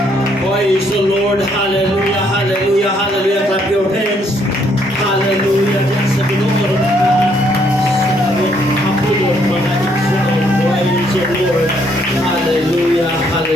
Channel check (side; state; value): both; normal; correlation 0.69